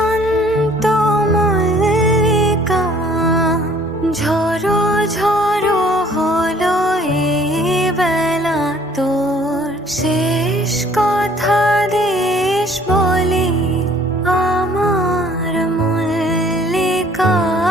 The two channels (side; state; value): both; normal; correlation 0.56